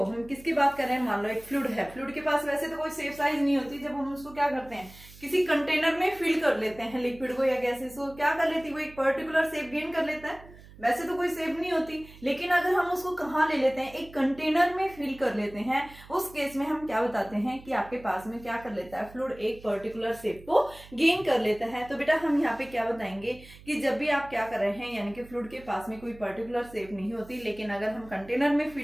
हम किसकी बात कर रहे हैं, मान लो एक फ्लूइड है, फ्लूइड के पास वैसे तो कोई सेफ साइज नहीं होती, जब हम उसको क्या करते हैं किसी कंटेनर में फिल कर लेते हैं लिक्विड को या गैसेस को, क्या कर लेती है वो एक पर्टिकुलर शेप गेन कर लेता है, वैसे तो कोई शेप नहीं होती, लेकिन अगर हम उसको कहाँ ले लेते हैं, एक कंटेनर में फिल कर लेते हैं, उस केस में हम क्या बताते हैं कि आपके पास में क्या कर लेता है फ्लूइड, एक पर्टिकुलर शेप को गेन कर लेता है। तो बेटा हम यहाँ पे क्या बताएंगे कि जब भी आप क्या कर रहे हैं, यानी कि फ्लूइड के पास में कोई पर्टिकुलर शेप नहीं होती, लेकिन अगर हम कंटेनर में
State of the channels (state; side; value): noise; right; hum, 20 dB below the sound